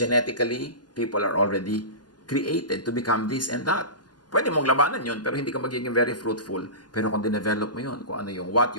people are already created to become this and that. Pwede mong labanan yun, pero hindi ka magiging very fruitful. Pero kung dinevelop mo yun, kung ano yung what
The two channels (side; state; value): right; late; 0.70 ms